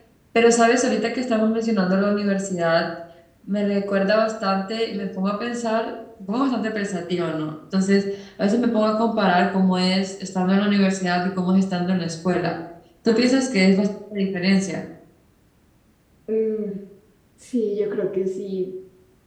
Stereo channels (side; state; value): both; identical; correlation 1.00